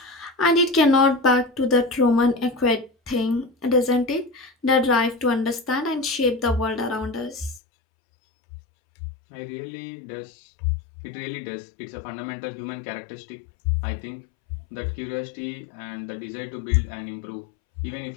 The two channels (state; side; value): drops out; right; at 7.6 s